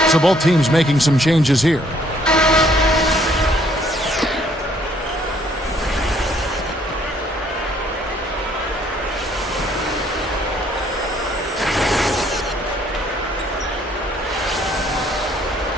So both teams making some changes here.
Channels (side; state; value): both; normal; correlation 0.64